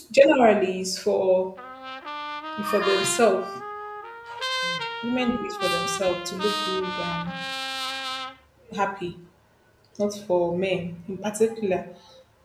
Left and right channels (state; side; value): identical; both; correlation 1.00